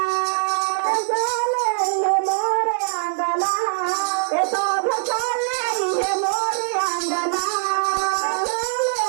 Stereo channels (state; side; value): silent; left; digital silence